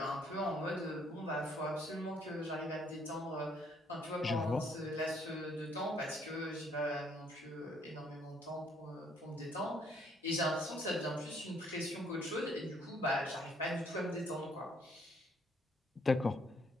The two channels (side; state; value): both; normal; correlation 0.66